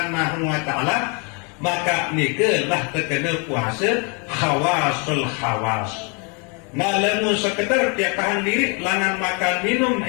wa taala, maka nikelah terkena puasa khawasul khawas. Nah lamun sekedar tiap tahan diri langan makan minum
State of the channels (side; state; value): right; quieter; 34.6 dB